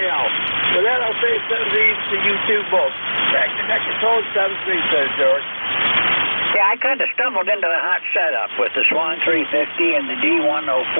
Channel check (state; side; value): inverted; both; correlation -1.00